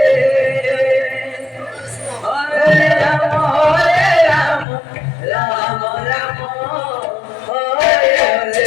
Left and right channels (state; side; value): drops out; right; at 4.7 s